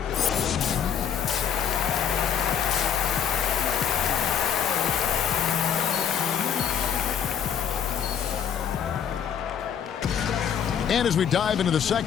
And as we dive into the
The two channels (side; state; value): right; quieter; 8.2 dB